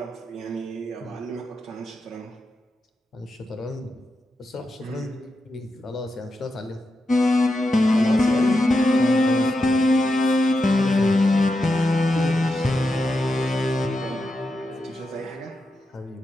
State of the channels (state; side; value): normal; both; correlation 0.87